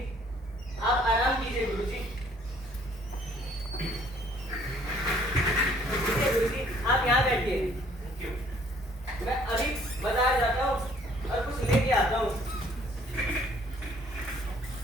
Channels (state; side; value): normal; both; correlation 0.60